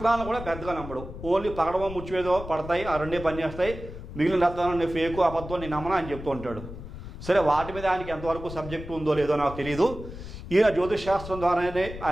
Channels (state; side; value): noise; left; rumble, 11 dB below the sound